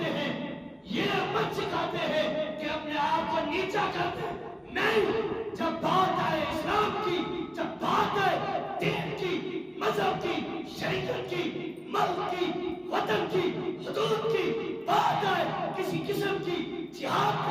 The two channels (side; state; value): both; identical; correlation 1.00